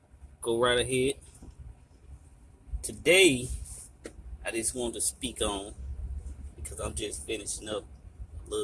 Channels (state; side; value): identical; both; correlation 1.00